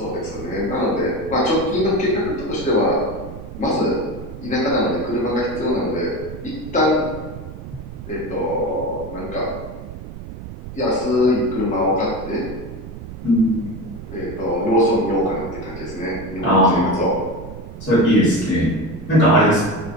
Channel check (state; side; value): noise; right; rumble, 12 dB below the sound